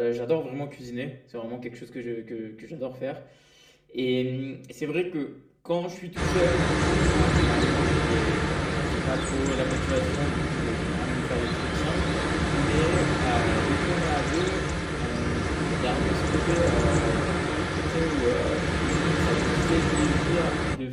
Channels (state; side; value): identical; both; correlation 1.00